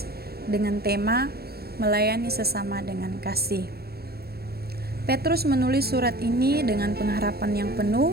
dengan tema melayani sesama dengan kasih. Petrus menulis surat ini dengan pengharapan yang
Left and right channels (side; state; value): left; late; 0.46 ms